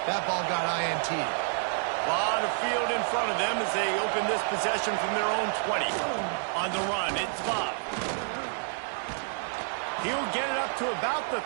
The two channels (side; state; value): left; silent; 59 dB below the other